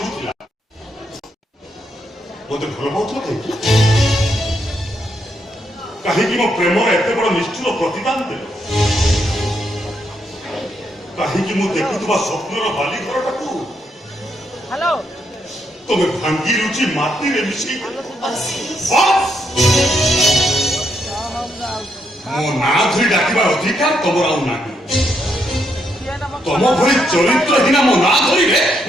ଥିଲା, ମତେ ଭଲ ପାଉଥିଲ କାହିଁକି? କାହିଁକି ମୋ ପ୍ରେମର ଏତେ ବଡ଼ ନିଷ୍ଠୁର ପ୍ରତିଦାନ ଦେଲ? କାହିଁକି ମୁଁ ଦେଖୁଥିବା ସ୍ୱପ୍ନର ବାଲି ଘରଟାକୁ ହ୍ୟାଲୋ ତମେ ଭାଙ୍ଗି ରୁଚି ମାଟିରେ ମିଶି ଆଶିଷ ମୋ ନାଁ ଧରି ଡାକିବାର ଅଧିକାର ତମର ଆଉ ନାହିଁ। ତମ ଭଳି ଚରିତ୍ରହୀନା ମୋ ନାଁ ଧରିଲେ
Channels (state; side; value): normal; both; correlation 0.78